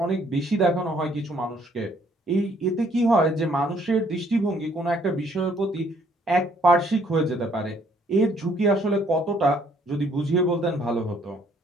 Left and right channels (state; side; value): normal; both; correlation 0.64